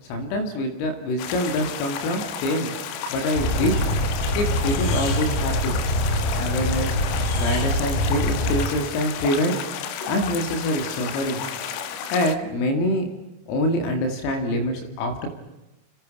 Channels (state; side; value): late; right; 29 ms